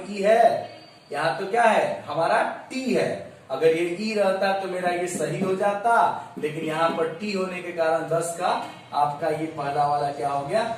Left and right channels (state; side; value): identical; both; correlation 1.00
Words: ई है, यहाँ तो क्या है हमारा टी है, अगर ये ई रहता तो मेरा ये सही हो जाता, लेकिन यहाँ पर टी होने के कारण 10 का आपका ये पहला वाला क्या हो गया,